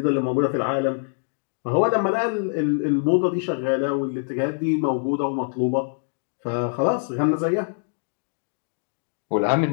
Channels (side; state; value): right; silent; digital silence